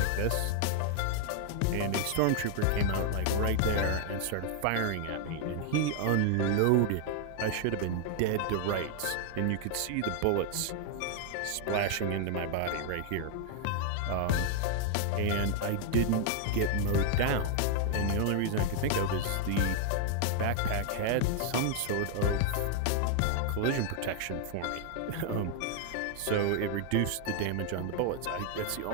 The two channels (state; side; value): different; both; correlation 0.00